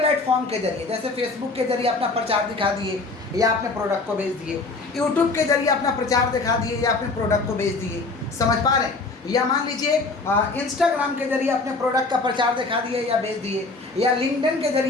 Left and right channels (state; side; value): quieter; right; 3.6 dB